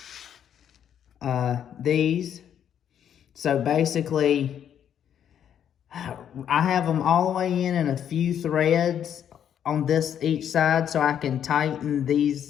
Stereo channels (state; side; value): quieter; right; 9.3 dB